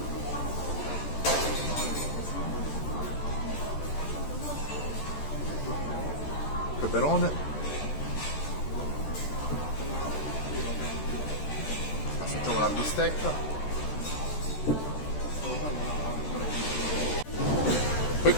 Peperone, assaggiamo la bistecca, poi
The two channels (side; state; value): right; late; 14 ms